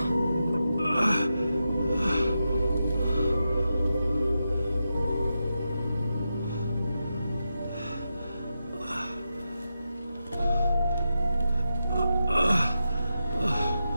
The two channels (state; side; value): inverted; both; correlation -0.88